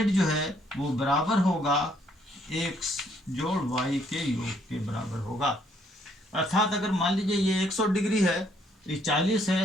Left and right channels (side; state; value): both; normal; correlation 0.68